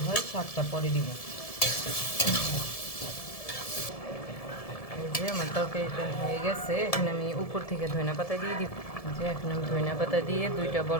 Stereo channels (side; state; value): right; late; 1.7 ms